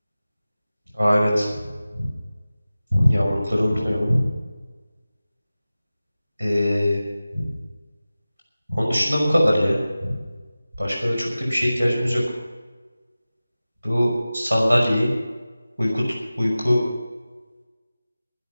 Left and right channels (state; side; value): inverted; both; correlation -0.96